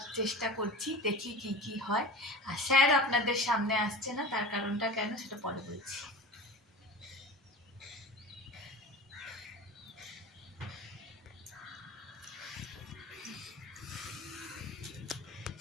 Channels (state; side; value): normal; both; correlation 0.34